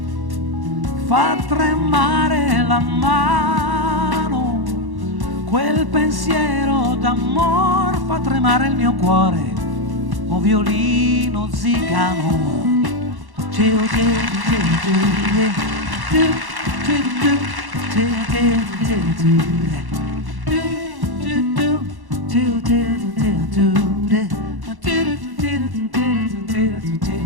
fa tremare la mano. Quel pensiero d'amor fa tremare il mio cuore, o violino zigano.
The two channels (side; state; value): left; late; 1.1 ms